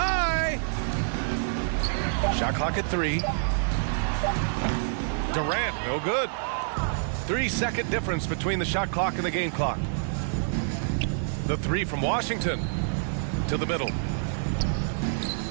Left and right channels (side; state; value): left; silent; 59 dB below the other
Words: Shot clock at 3. Durant, no good. 3-second difference between the shot clock and the game clock. The 3 from Washington. To the middle.